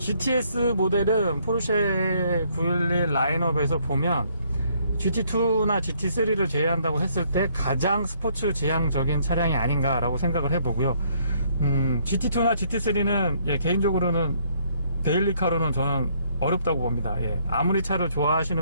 모델은 포르쉐 911 라인업에서 보면 GT2나 GT3를 제외한다고 했을 때 가장 스포츠 지향적인 차량이 아닌가라고 생각을 해보고요. GT2나 GT3는 개인적으로는 데일리카로는 저는 어렵다고 봅니다. 아무리 차를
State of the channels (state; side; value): inverted; both; correlation -0.67